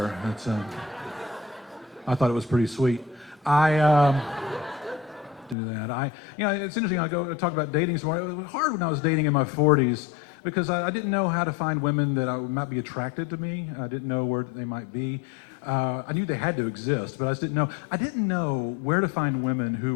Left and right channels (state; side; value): drops out; right; at 5.6 s